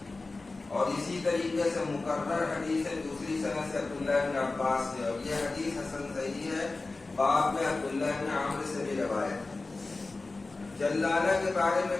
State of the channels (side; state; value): right; quieter; 3.5 dB